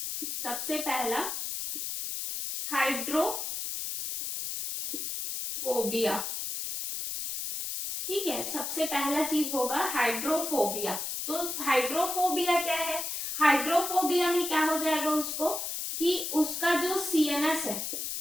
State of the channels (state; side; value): noise; left; hiss, 4 dB below the sound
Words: सबसे पहला हाइड्रोफोबिया। ठीक है, सबसे पहला चीज होगा हाइड्रोफोबिया। तो हाइड्रोफोबिया क्या है? हाइड्रोफोबिया में क्या हो जाएगा उसको कि उसका जो सीएनएस है,